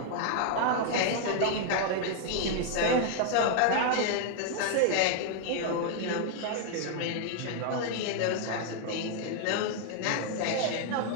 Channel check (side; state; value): both; different; correlation 0.00